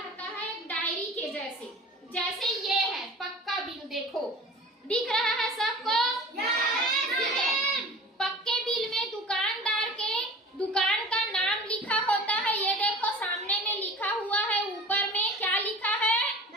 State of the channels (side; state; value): both; normal; correlation 0.40